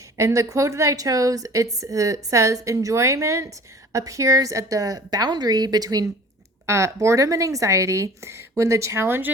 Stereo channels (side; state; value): both; normal; correlation 0.45